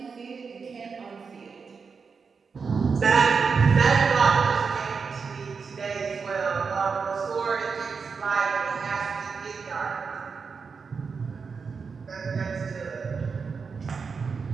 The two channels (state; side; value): quieter; left; 5.4 dB